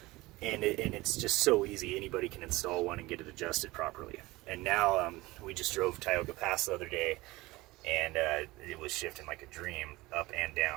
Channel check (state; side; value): quieter; left; 20.3 dB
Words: and it's just so easy. Anybody can install one and get it adjusted properly. And now we just drove Tioga Pass the other day, and it was shifting like a dream up and